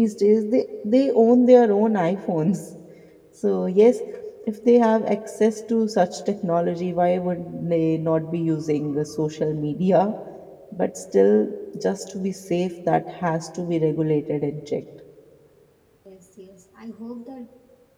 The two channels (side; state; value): both; identical; correlation 1.00